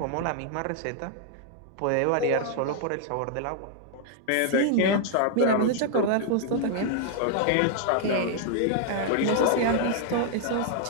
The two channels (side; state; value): both; different; correlation 0.00